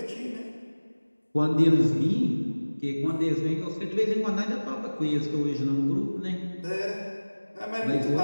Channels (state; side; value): inverted; both; correlation -1.00